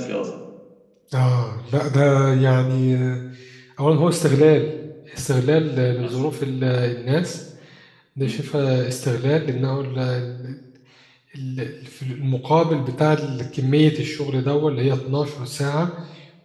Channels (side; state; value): both; identical; correlation 1.00